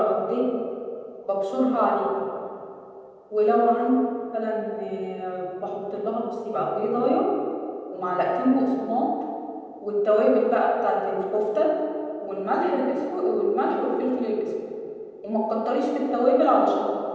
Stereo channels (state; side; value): identical; both; correlation 1.00